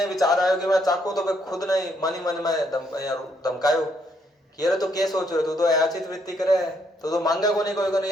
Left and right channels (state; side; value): normal; both; correlation 0.72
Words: विचार आयो कि मैं चाखूं, तो मैं खुद नहीं मन ही मन में धमकायो कि अरे तो क्या सोच रहे तू तो अयाचित वृत्ति करे है, तो मांगे को नहीं कोई